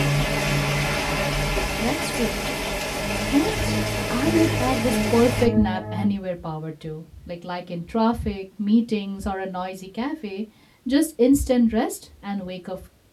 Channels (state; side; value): identical; both; correlation 1.00